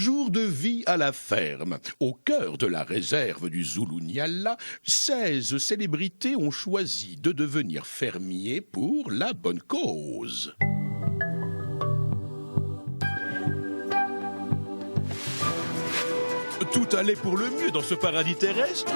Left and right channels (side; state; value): both; inverted; correlation -1.00